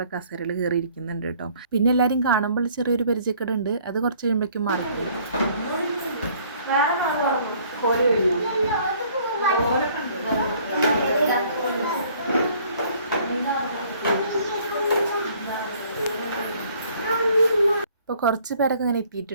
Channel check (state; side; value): inverted; both; correlation -0.59